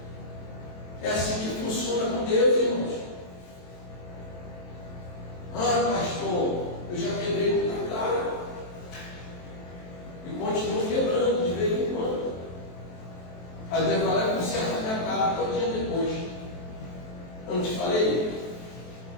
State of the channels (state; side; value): late; right; 23 ms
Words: É assim que funciona com Deus, irmãos. Ah, pastor, eu já quebrei muita cara e continuo quebrando de vez em quando. Aí Deus vai lá e conserta a minha cara todo dia depois. Eu não te falei?